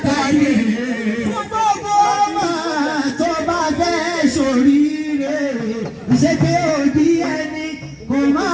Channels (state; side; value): identical; both; correlation 1.00